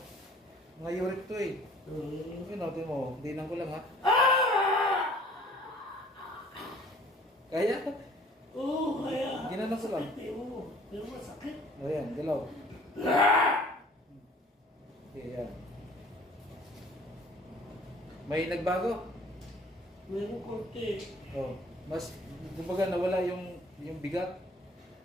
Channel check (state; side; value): normal; both; correlation 0.52